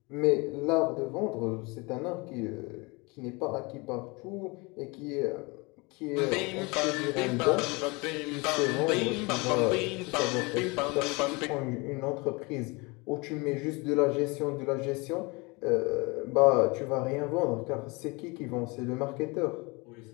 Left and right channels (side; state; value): right; quieter; 26.9 dB